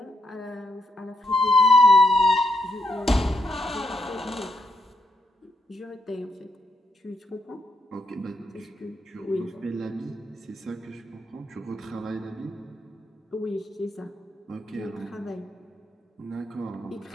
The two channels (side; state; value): both; normal; correlation 0.78